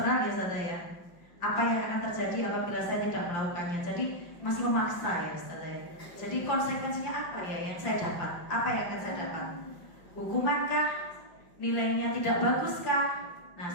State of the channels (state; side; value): late; right; 5.8 ms